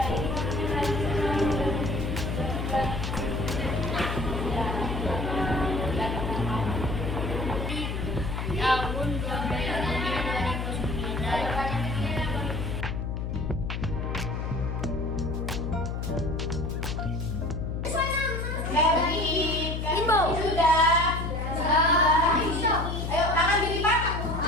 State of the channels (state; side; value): noise; left; hum, 3 dB below the sound